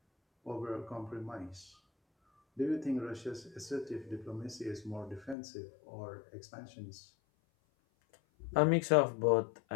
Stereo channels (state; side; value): drops out; right; at 5.4 s